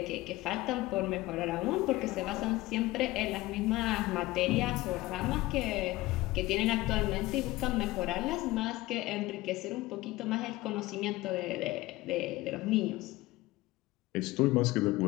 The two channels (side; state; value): right; quieter; 19.0 dB